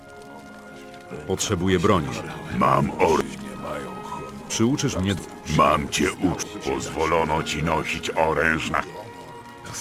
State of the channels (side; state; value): both; identical; correlation 1.00